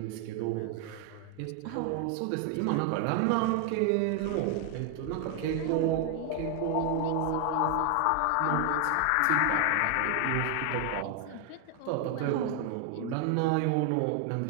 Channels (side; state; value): both; different; correlation 0.00